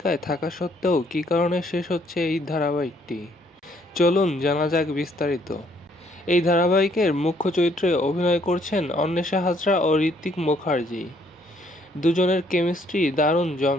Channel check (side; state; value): both; normal; correlation 0.66